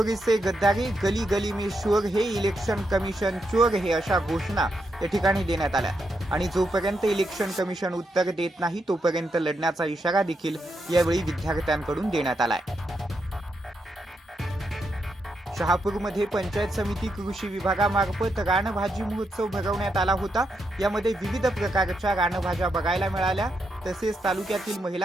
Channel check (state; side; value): normal; both; correlation 0.82